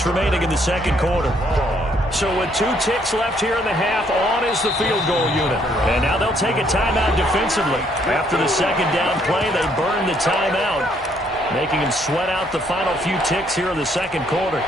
remaining in the second quarter. So with 2 ticks left here in the half, on is the field goal unit. And now they'll take a timeout defensively. After the second down play, they burn the timeout, making them sweat out the final few ticks here in the second quarter.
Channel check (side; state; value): both; normal; correlation 0.68